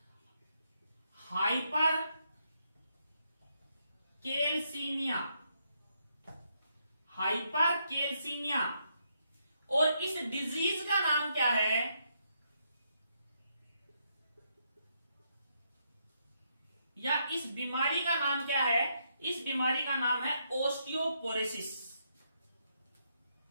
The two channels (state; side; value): inverted; both; correlation -0.77